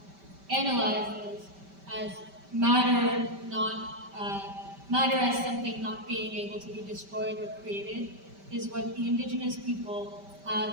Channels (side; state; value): left; late; 5.1 ms